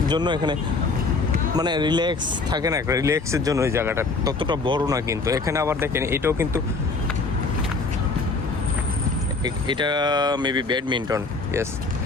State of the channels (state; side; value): quieter; right; 3.9 dB